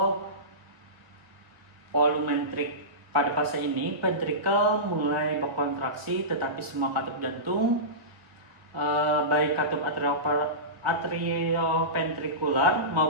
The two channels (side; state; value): left; late; 1.3 ms